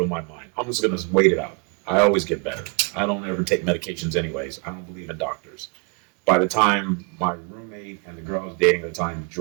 in my mind. I'm just going to wait it out. I always get better. I don't ever take medications anyways. I don't believe in doctors. By the time my roommate and the girl I was dating at the time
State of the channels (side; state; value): left; quieter; 34.4 dB